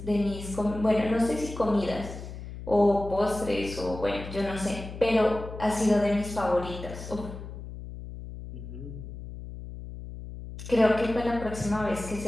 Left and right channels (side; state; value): left; noise; hum, 11 dB below the sound